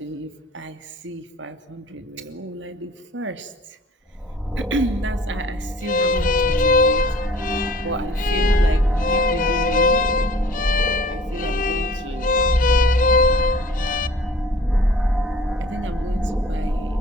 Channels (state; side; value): normal; both; correlation 0.49